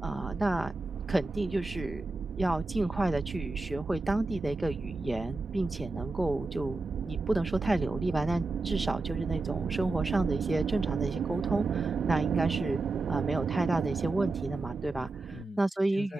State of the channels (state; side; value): quieter; left; 3.2 dB